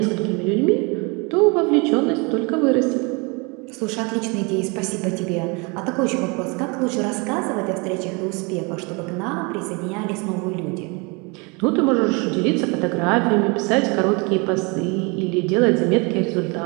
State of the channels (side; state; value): left; quieter; 29.7 dB